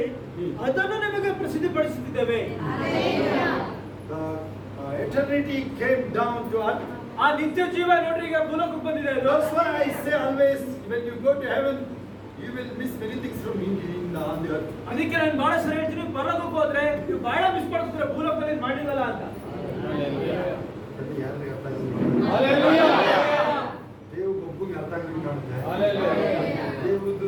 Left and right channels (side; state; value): both; identical; correlation 1.00